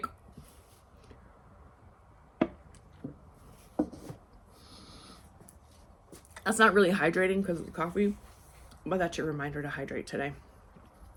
That's not really hydrating because of the coffee, but that's your reminder to hydrate today.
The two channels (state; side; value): identical; both; correlation 1.00